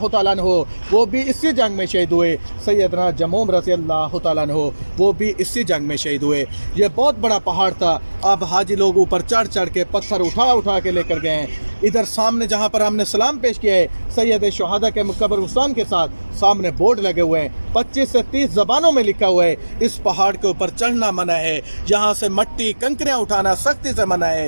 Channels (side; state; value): both; inverted; correlation -1.00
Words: तआला अन्हु वो भी इसी जंग में शहीद हुए। सैयदना जमूम रज़ी अल्लाह तआला अन्हु वो भी इसी जंग में शहीद हुए। ये बहुत बड़ा पहाड़ था। अब हाजी लोग ऊपर चढ़ चढ़ के पत्थर उठा उठा के लेकर गए हैं। इधर सामने जहाँ पर हमने सलाम पेश किया है सैयद शुहदा के कब्रिस्तान के साथ, सामने बोर्ड लगे हुए हैं, 25 से 30 ज़बानों में लिखा हुआ है इस पहाड़ के ऊपर चढ़ना मना है, यहाँ से मट्टी कंकरियाँ उठाना सख्ती से मना